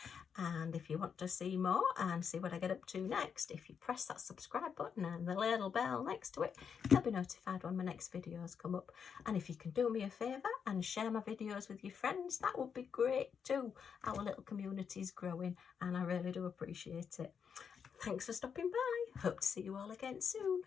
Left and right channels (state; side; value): quieter; right; 6.9 dB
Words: and if you want to see more and see what I get up to next, if you press that subscribe button and the little bell next to it, you'll be notified when my next videos come up. And if you can do me a favour and share my videos with your friends, that would be great too. Our little community is growing and I really do appreciate it. Thanks for stopping by. Hope to see you all again soon.